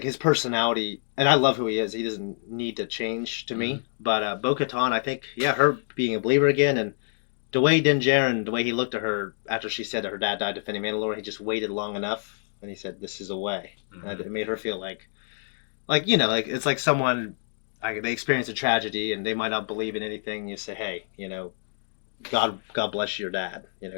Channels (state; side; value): silent; right; digital silence